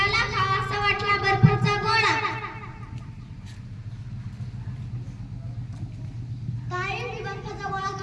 खावासा वाटला बर्फाचा गोळा. ताई, मी बर्फाचा गोळा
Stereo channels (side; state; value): both; identical; correlation 1.00